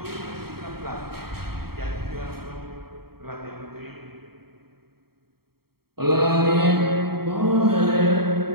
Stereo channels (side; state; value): left; late; 0.95 ms